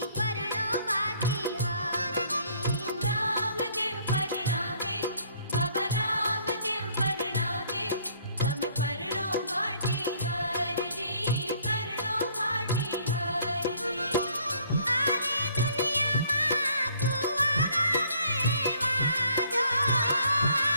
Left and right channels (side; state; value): both; inverted; correlation -0.61